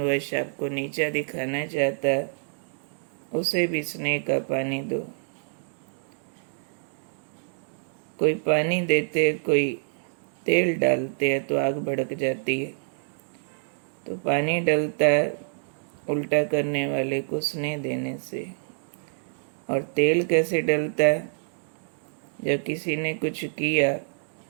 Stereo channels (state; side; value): silent; left; digital silence